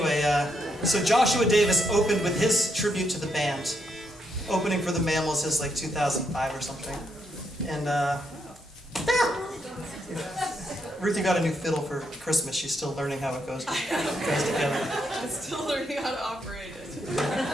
so Joshua Davis opened with his tribute to the band. Opening for the Mammals is 2005 or something. And Ruthy got a new fiddle for Christmas. She's still learning how it goes together. I'm still learning how to operate it.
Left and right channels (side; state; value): both; normal; correlation 0.78